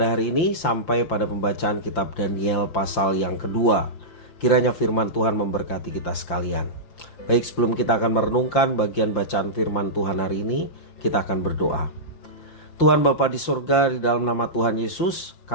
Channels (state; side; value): late; right; 5.8 ms